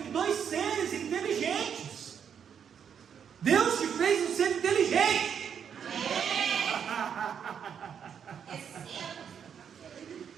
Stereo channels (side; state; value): left; quieter; 7.8 dB